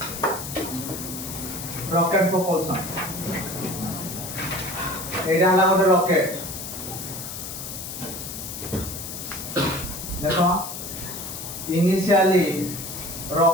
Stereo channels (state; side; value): noise; left; hiss, 8 dB below the sound